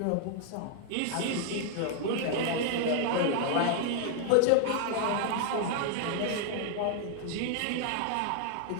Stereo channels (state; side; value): different; both; correlation 0.00